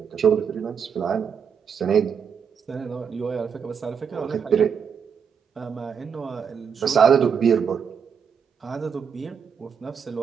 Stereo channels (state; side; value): quieter; left; 6.9 dB